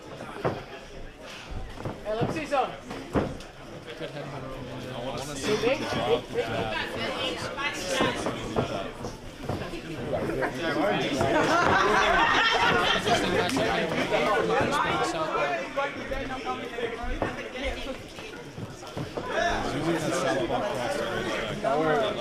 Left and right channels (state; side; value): identical; both; correlation 1.00